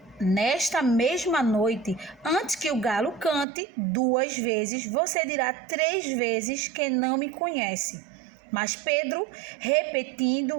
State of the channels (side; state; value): left; drops out; at 3.5 s